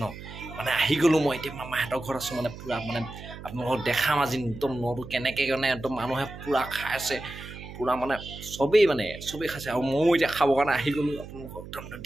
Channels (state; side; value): noise; right; hum, 13 dB below the sound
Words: ন মানে আহি গলো মই এতিয়া মামাহঁতৰ ঘৰত আছো মানে পুৰা মানে আপোনালোকক দেখাম আজি একদম নটো কেনেকে মানে একদম মানুহে পুৰা খাইছে পুৰা মানে সবেই খাইছে আৰু ময়ো এতিয়া খাবৰ কাৰণে আহি গলো আপোনালোকক একদম